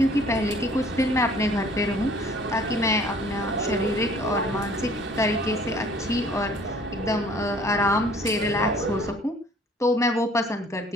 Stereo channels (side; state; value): both; normal; correlation 0.54